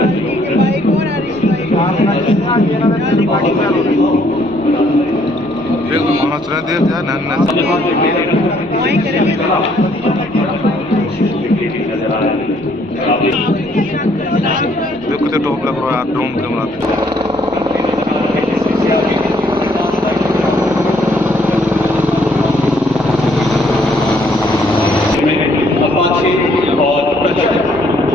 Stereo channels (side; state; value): left; noise; rumble, 24 dB below the sound